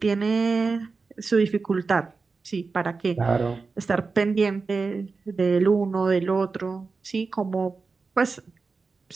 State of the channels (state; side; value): quieter; left; 4.4 dB